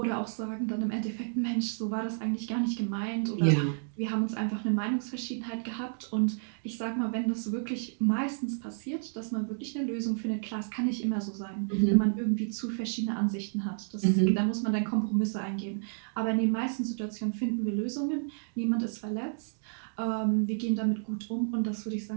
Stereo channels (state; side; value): silent; left; digital silence